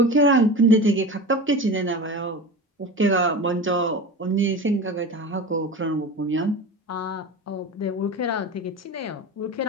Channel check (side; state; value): both; normal; correlation 0.30